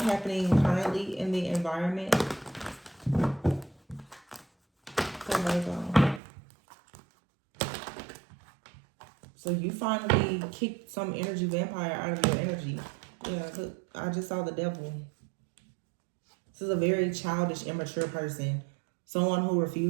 happening currently in the environment? So you finally kicked some energy vampire out of your energy. Yeah, I just saw the devil. This is a very childish, immature person. Someone who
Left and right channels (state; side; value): drops out; left; at 6.2 s